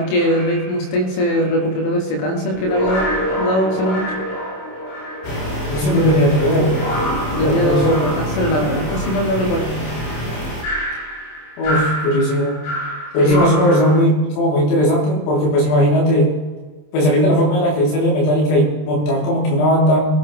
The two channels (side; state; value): right; late; 27 ms